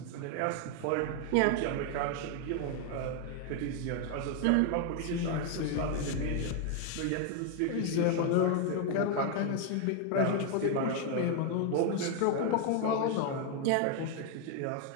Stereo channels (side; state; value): both; different; correlation 0.00